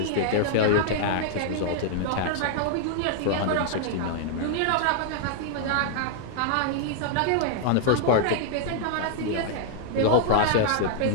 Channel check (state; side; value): different; both; correlation 0.00